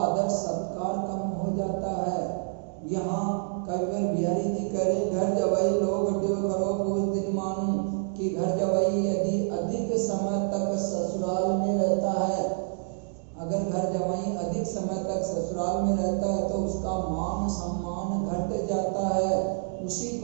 सत्कार कम हो जाता है। यहाँ कविवर बिहारी जी कह रहे, घर जवाई लोग घट्यो खरो पूस दिन मानू, कि घर जवाई यदि अधिक समय तक ससुराल में रहता है, अगर घर जवाई अधिक समय तक ससुराल में रहता है तो उसका मान सम्मान घट जाता है। उसी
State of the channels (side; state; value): left; silent; digital silence